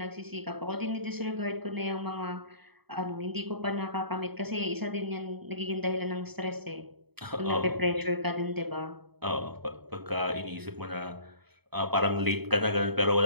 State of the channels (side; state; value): left; late; 0.97 ms